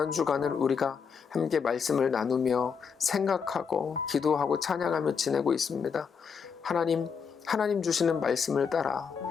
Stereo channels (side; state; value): right; quieter; 6.3 dB